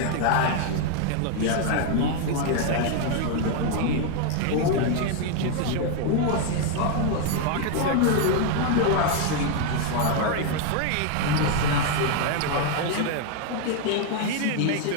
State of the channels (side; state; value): both; different; correlation 0.00